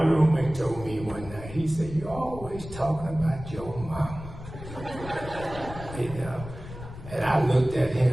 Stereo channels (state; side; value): noise; left; rumble, 12 dB below the sound